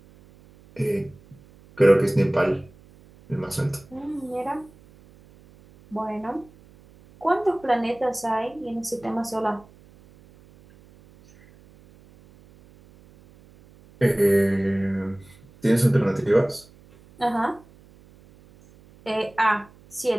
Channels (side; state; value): right; noise; hum, 26 dB below the sound